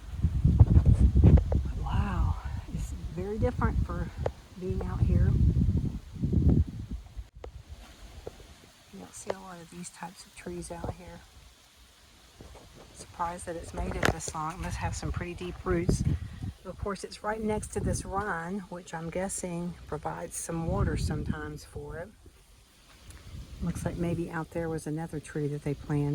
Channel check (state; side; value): identical; both; correlation 1.00